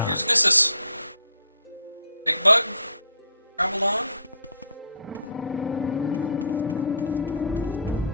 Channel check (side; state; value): both; inverted; correlation -0.58